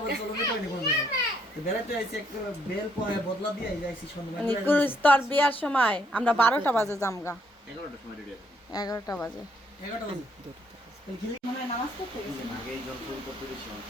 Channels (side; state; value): both; normal; correlation 0.70